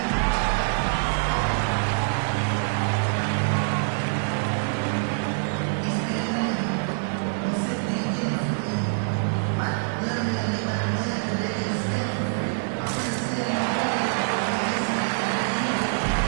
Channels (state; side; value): silent; left; digital silence